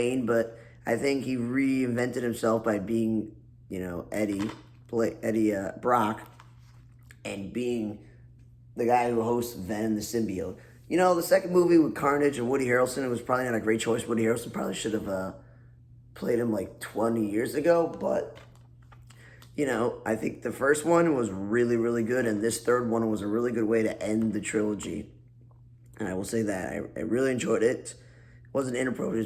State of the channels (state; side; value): identical; both; correlation 1.00